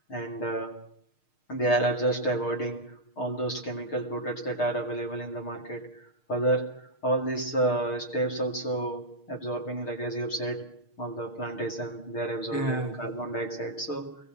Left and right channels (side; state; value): right; late; 6.5 ms